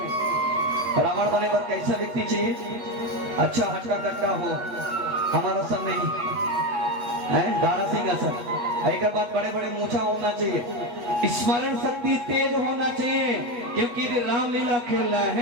रावण बने पर कैसा व्यक्ति चाहिए? अच्छा हटका कट्टा हो, हमारा सब नहीं है, दारा सिंह असर। एक बात, बड़े बड़े मूछा होना चाहिए, स्मरण शक्ति तेज होना चाहिए, क्योंकि रामलीला खेल रहा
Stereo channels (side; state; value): left; late; 8.1 ms